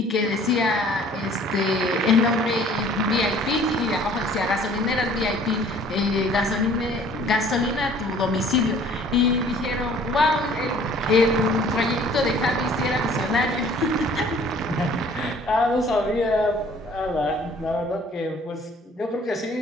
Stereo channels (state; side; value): normal; both; correlation 0.53